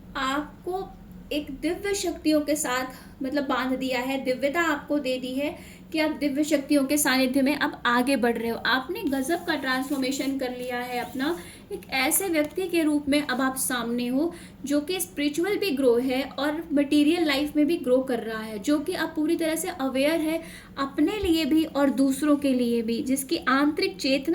आपको एक दिव्य शक्तियों के साथ मतलब बांध दिया है, दिव्यता आपको दे दी है कि आप दिव्य शक्तियों के सानिध्य में अब आगे बढ़ रहे हो। आपने गजब का ट्रांसफॉर्मेशन कर लिया है अपना, एक ऐसे व्यक्ति के रूप में अब आप सामने हो जो कि स्पिरिचुअल भी ग्रो है और मटेरियल लाइफ में भी ग्रो कर रहा है, जो कि अब पूरी तरह से अवेयर है अपने लिए भी और दूसरों के लिए भी, जिसकी आंतरिक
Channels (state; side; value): identical; both; correlation 1.00